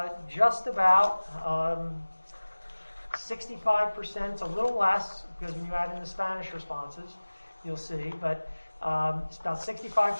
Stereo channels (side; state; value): both; inverted; correlation -1.00